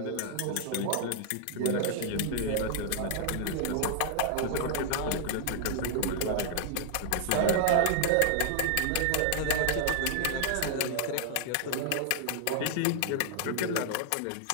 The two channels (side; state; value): both; different; correlation 0.00